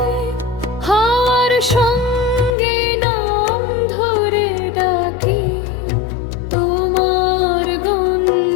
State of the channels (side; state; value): right; drops out; at 2.5 s